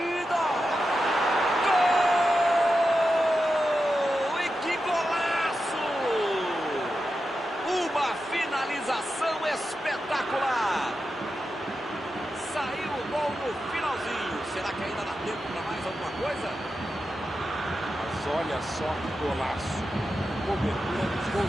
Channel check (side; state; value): both; normal; correlation 0.90